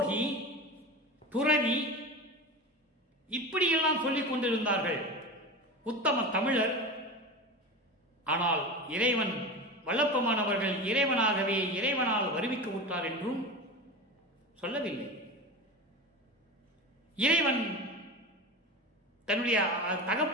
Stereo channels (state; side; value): normal; both; correlation 0.28